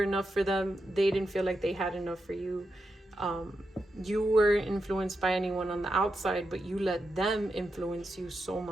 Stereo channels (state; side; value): normal; both; correlation 0.87